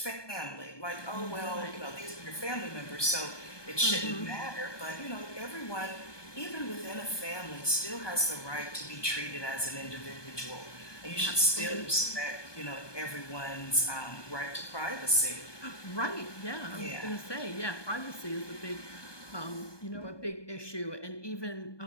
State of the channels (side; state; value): right; late; 1.2 ms